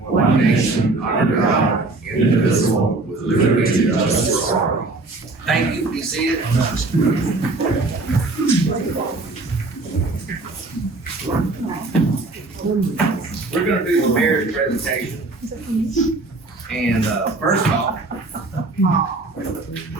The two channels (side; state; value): left; quieter; 3.2 dB